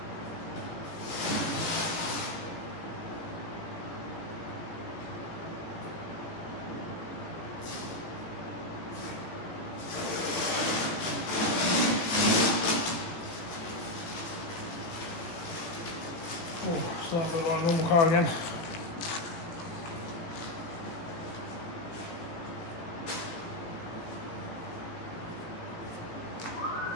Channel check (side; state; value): right; late; 18 ms